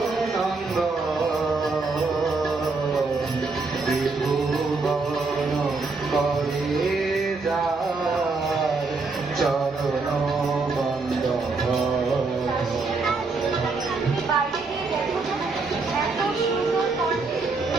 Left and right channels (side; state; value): left; quieter; 4.0 dB